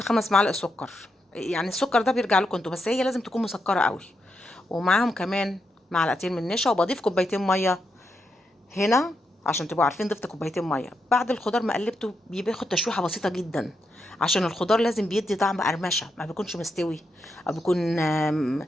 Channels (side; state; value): both; normal; correlation 0.83